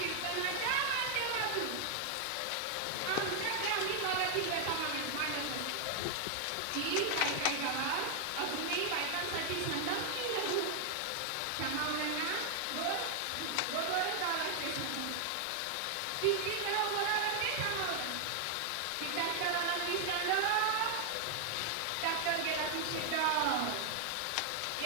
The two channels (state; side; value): different; both; correlation 0.00